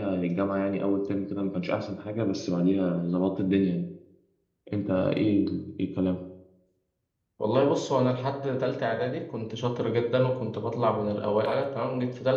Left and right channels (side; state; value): both; identical; correlation 1.00